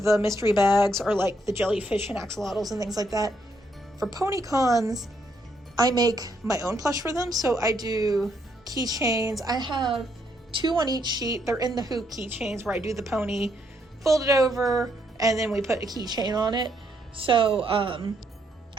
mystery bags, or like the jellyfish and axolotls and things like that, for pony cons, I make my own plush for them. So I do keychains. I have 2 on each sheet. They're in the hoop keychains where I do the pony, fold it over, and then we put a keychain on it. So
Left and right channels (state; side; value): normal; both; correlation 0.74